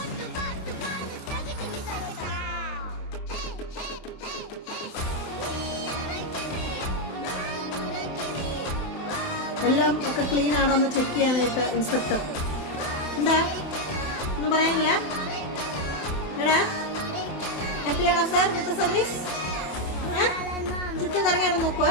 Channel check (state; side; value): late; right; 27 ms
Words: എല്ലാം ഒക്കെ ക്ലീൻ ആണോ എന്ന് ചെക്ക് ചെയ്യാനായിട്ട് ഇൻസ്പെക്ടർ. എന്താ ഒന്നും പറയാനില്ല? എടാ ഹാപ്പിയാണോ സാർ ഇന്നത്തെ സർവീസ്? ചുറ്റും കറങ്ങിയാണ് നോക്കുക.